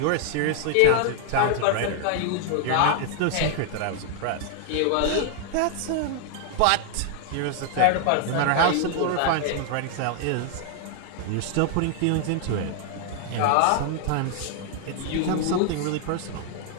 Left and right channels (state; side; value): different; both; correlation 0.00